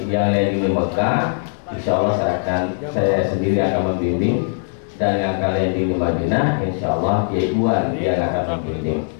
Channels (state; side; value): silent; right; digital silence